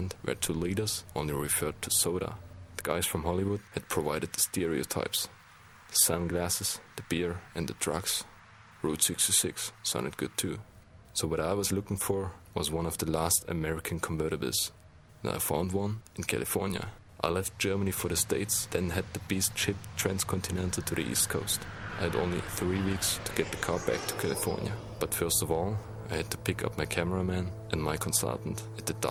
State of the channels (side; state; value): both; identical; correlation 1.00